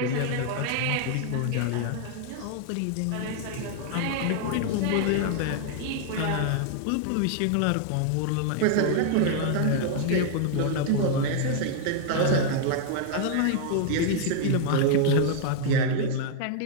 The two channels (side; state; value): both; different; correlation 0.00